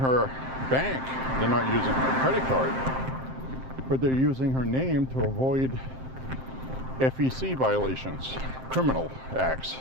bank, they're not using her credit card, but they're using her name to avoid FEC violations, criminal acts,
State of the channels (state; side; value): late; left; 7.6 ms